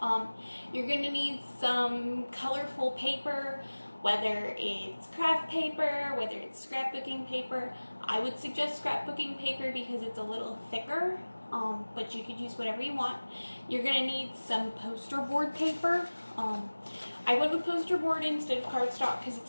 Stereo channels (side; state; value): both; inverted; correlation -1.00